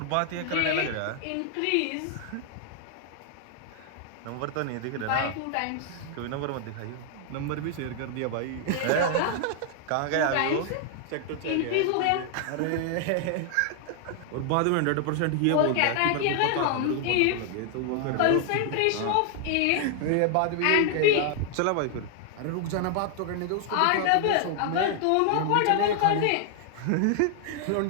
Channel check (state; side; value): different; both; correlation 0.00